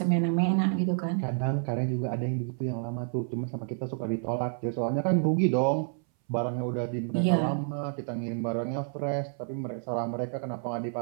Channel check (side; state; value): left; silent; 58 dB below the other